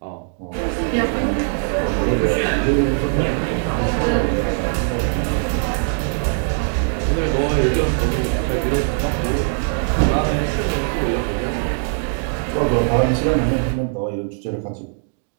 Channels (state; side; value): silent; left; digital silence